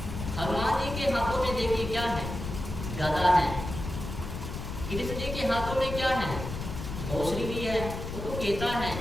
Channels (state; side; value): noise; left; rumble, 7 dB below the sound